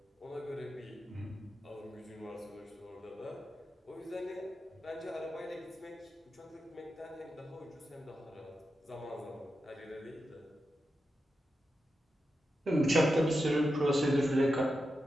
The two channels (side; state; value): both; normal; correlation 0.89